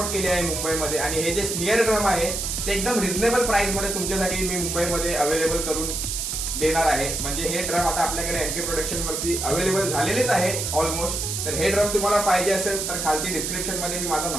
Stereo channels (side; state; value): right; noise; hiss, 2 dB below the sound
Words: केले आहे मुंबईमध्ये. आणि हे जे स्मिअर ड्रम आहे ते एकदम रिझनेबल प्राइस मध्ये तुमच्यासाठी मी मुंबईमध्ये अवेलेबल करून देणार आहे. म्हणजे हे ड्रम आता आपल्याकडे एमके प्रोडक्शन वरती अवेलेबल झालेलेच आहे ऑलमोस्ट. तर हे ड्रम तुम्हाला पाहिजे असेल तर खालती डिस्क्रिप्शन मध्ये मी माझा